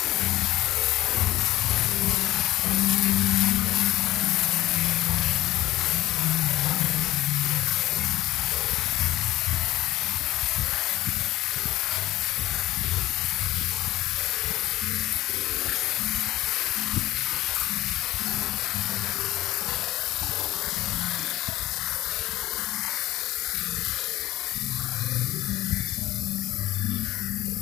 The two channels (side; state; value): right; quieter; 15.8 dB